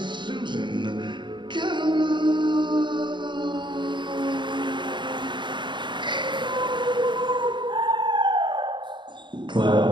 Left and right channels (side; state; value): left; late; 0.23 ms